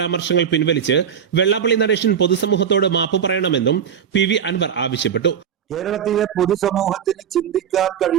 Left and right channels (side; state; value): left; quieter; 8.1 dB